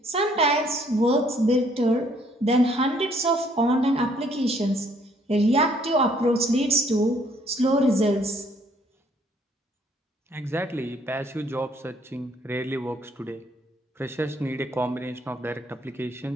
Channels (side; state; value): both; normal; correlation 0.64